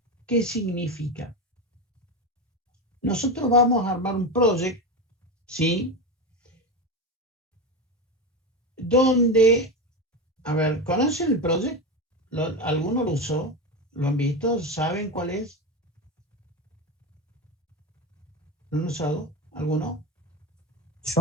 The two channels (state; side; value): normal; both; correlation 0.18